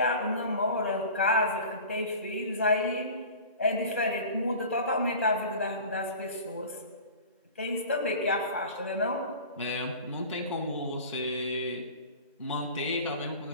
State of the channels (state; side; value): inverted; both; correlation -0.39